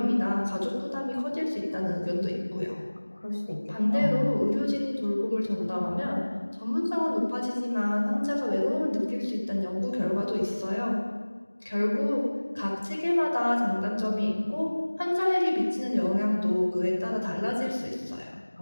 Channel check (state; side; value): inverted; both; correlation -1.00